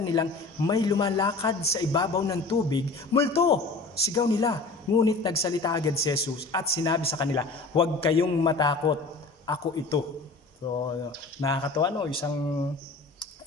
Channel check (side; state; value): right; quieter; 3.6 dB